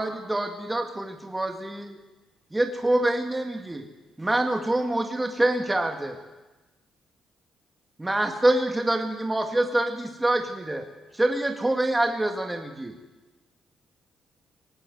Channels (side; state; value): both; normal; correlation 0.96